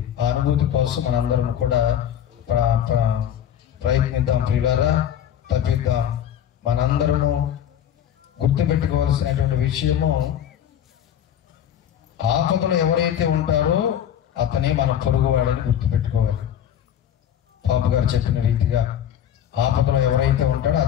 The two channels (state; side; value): quieter; right; 9.9 dB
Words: ఆ అనుభూతి కోసం మనందరం కూడా ప్రయత్నిద్దాం ప్రియులారా, తప్పిద్దాం. మనందరము గుర్తుపెట్టుకోవాల్సినటువంటి విషయము, ఆపదలో ఎవరైతే ఉంటారో అతనే మన పొరుగువాడని గుర్తుపెట్టుకోవాలి. పాప గారు చెప్పిన రీతిగా ఆపదలో ఎవరైతే ఉంటాడో